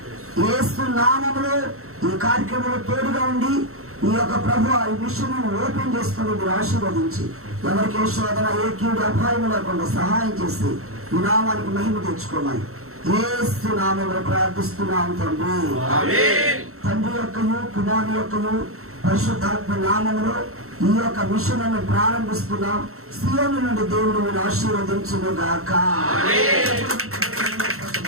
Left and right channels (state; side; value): late; left; 0.63 ms